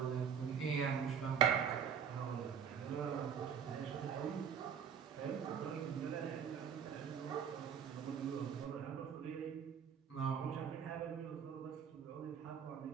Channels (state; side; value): quieter; left; 7.6 dB